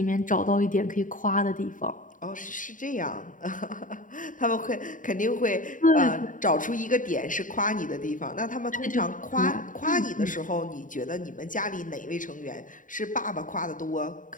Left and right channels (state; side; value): late; right; 0.38 ms